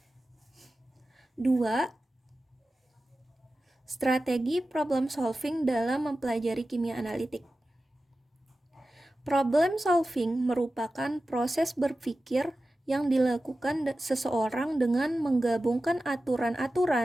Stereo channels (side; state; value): both; normal; correlation 0.94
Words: 2. Strategi problem solving dalam mempelajari kimia analitik. Problem solving merupakan proses berpikir yang dilakukan seseorang dengan menggabungkan